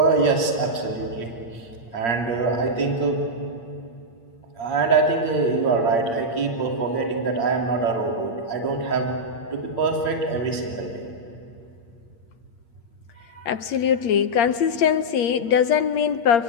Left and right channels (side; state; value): right; late; 8.6 ms